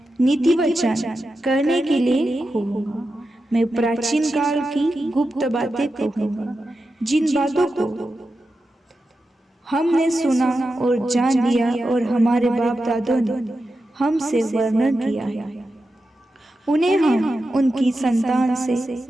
नीति वचन कहने के लिए खोलूंगा। मैं प्राचीन काल की गुप्त बातें कहूंगा, जिन बातों को हमने सुना और जान लिया और हमारे बाप दादों ने हमसे वर्णन किया है। उन्हें हम उनकी संतान से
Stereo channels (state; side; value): normal; both; correlation 0.90